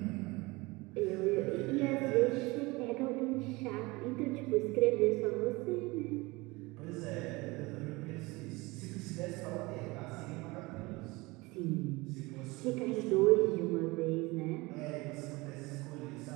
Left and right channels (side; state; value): left; quieter; 23.2 dB